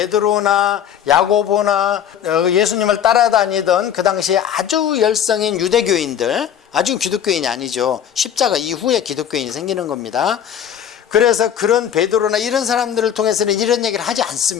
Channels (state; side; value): quieter; right; 9.3 dB